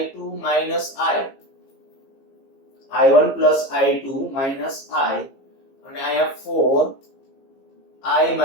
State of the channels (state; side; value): late; right; 15 ms